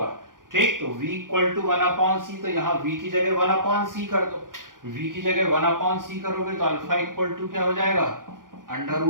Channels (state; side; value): late; left; 0.90 ms